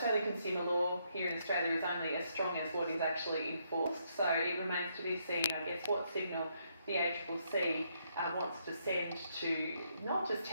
consumer law here in Australia is only as strong as what is actually enforced, so it remains to be seen, I guess, what signal the ACCC wants to send to not just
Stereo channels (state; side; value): inverted; both; correlation -0.75